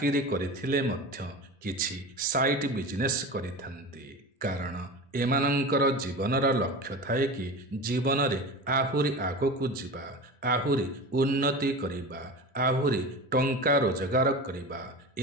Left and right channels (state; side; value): normal; both; correlation 0.30